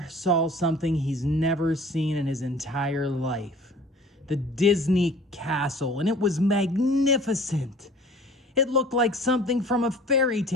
saw something he's never seen in his entire life. The Disney Castle, and it was magnificent. It looked like something from a fairy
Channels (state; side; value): normal; both; correlation 0.48